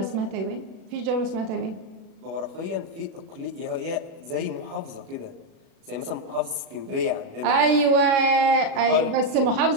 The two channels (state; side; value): late; left; 36 ms